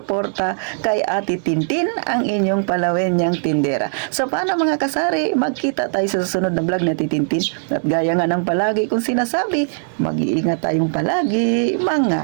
kay Ate Tintin, ang inyong palawenyang tindera. So paano, mga kasari, magkita tayo sa susunod na vlog ni Ate Tintin. At gaya nga ng palagi kong sinasabi, mag-iingat tayong palagi, mga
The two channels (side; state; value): left; silent; digital silence